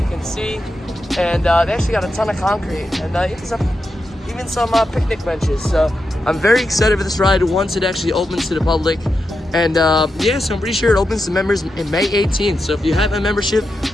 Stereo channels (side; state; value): both; normal; correlation 0.87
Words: can see. And they actually got a ton of concrete, and even some picnic benches. So I'm very excited for this ride once it actually opens to the public. And yeah, so I'm pretty sure it opens to members in May 18th. So if you have a membership